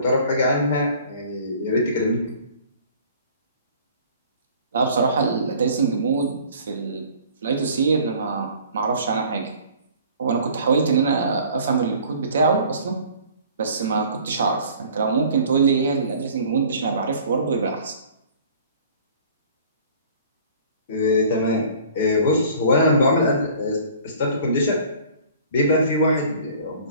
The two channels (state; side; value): inverted; both; correlation -0.50